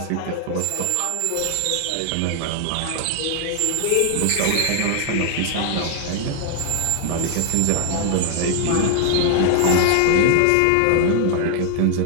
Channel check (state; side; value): different; both; correlation 0.00